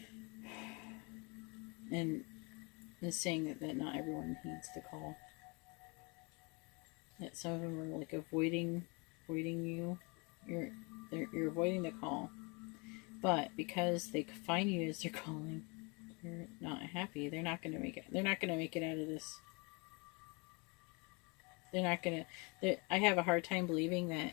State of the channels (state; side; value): quieter; right; 30.1 dB